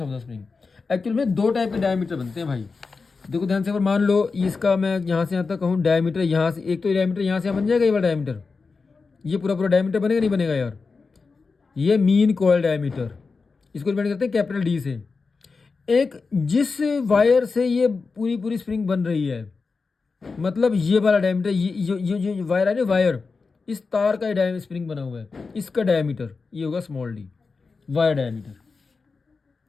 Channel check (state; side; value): quieter; right; 4.5 dB